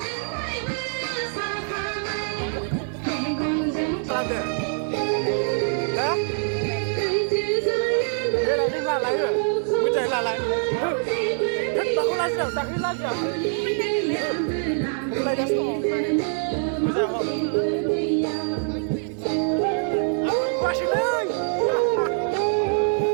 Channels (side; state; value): left; silent; 56 dB below the other